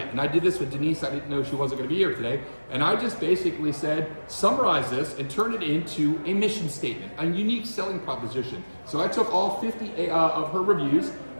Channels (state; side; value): inverted; both; correlation -1.00